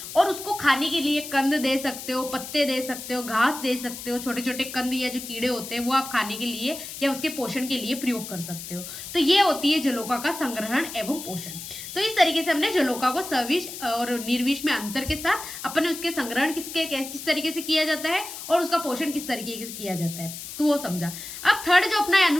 और उसको खाने के लिए कंद दे सकते हो, पत्ते दे सकते हो, घास दे सकते हो, छोटे छोटे कंद या जो कीड़े होते हैं वो आप खाने के लिए या उसके पोषण के लिए प्रयोग कर सकते हो। तो ये होती है जलोका का संग्रहण एवं पोषण। तो इस तरीके से हमने जलोका को सविष और निर्विष में अंतर के साथ अपन उसके संग्रहण किस तरीके से किया जाता है और उसका पोषण किस तरीके से किया जाता है तो वो समझा। अब थर्ड जो अपना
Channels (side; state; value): left; noise; hiss, 10 dB below the sound